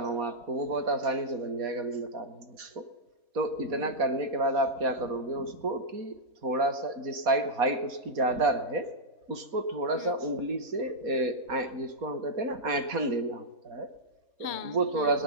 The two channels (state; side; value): late; left; 4.1 ms